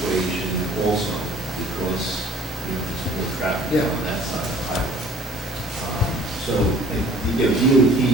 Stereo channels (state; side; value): normal; both; correlation 0.52